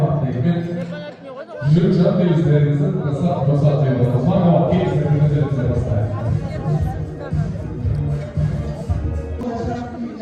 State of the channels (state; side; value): identical; both; correlation 1.00